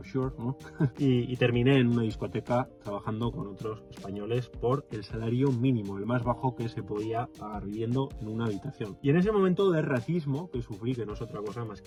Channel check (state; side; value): identical; both; correlation 1.00